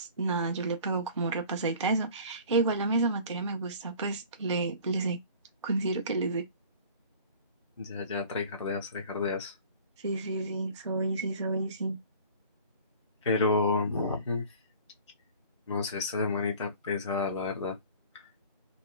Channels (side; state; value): both; inverted; correlation -0.46